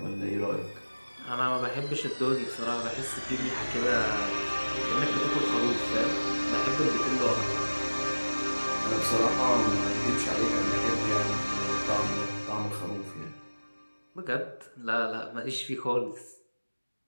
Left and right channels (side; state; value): both; inverted; correlation -1.00